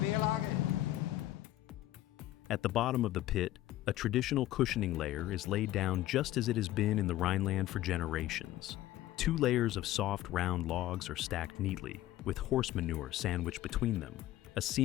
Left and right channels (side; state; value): right; quieter; 14.7 dB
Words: Querlage. At the bottom of the pit, a traditional cushioning layer is laid down just as it has been in the Rhineland for generations. 2 layers of soft, round logs are stacked neatly, with horse manure sandwiched between them, a